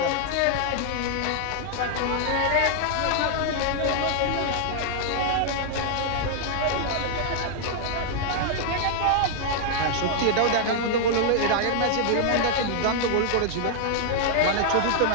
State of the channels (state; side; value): different; both; correlation -0.01